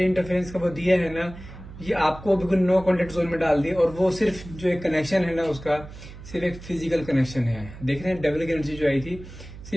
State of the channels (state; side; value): noise; right; hum, 15 dB below the sound